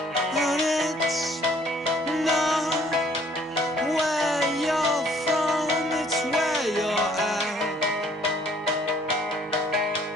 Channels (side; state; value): both; normal; correlation 0.60